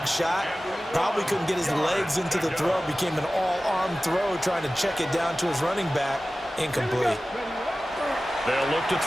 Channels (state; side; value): normal; both; correlation 0.96